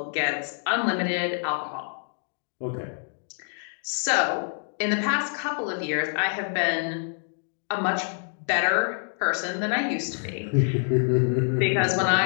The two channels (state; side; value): silent; right; 57 dB below the other